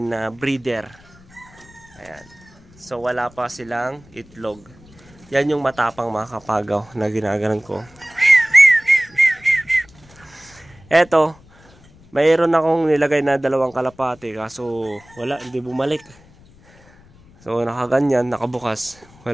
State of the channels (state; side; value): noise; left; rumble, 26 dB below the sound